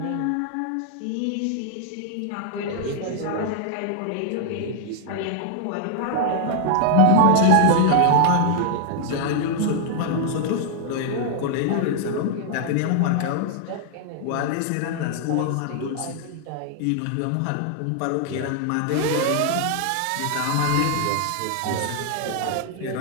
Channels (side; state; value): both; different; correlation 0.00